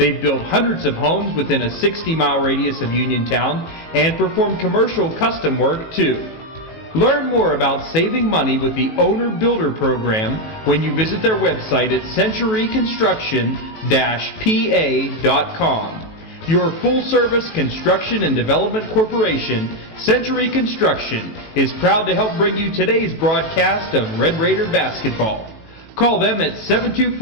built hundreds of homes within a 60-mile radius of Uniontown and perform commercial custom work too. Learn more about saving money with the Owner Builder Program when you visit their website at centuryconstruction-pa.com. Your full-service construction and development corporation, Century Construction, is proud to help bring you today's broadcast of Red Raider basketball. Call them at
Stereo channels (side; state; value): right; late; 18 ms